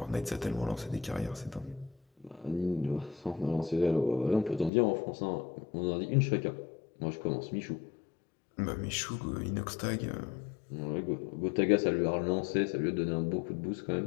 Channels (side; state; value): right; drops out; at 4.7 s